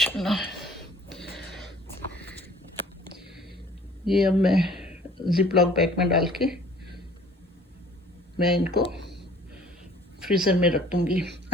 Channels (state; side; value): normal; both; correlation 0.52